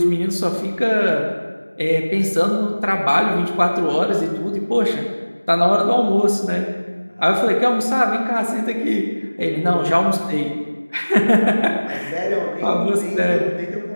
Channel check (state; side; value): inverted; both; correlation -1.00